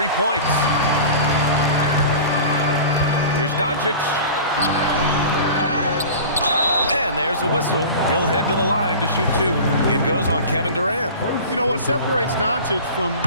points. Here's Doncic. And there's a whistle. He'll head to the line to shoot 2. It goes on Kevin Durant. You know what separates Doncic from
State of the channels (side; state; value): both; inverted; correlation -0.37